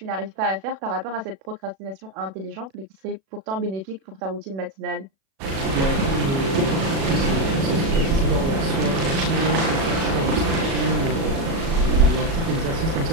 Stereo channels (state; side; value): late; left; 37 ms